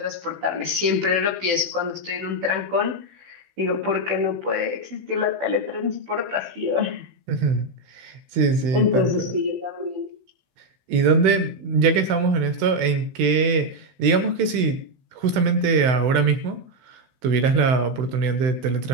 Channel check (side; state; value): left; late; 16 ms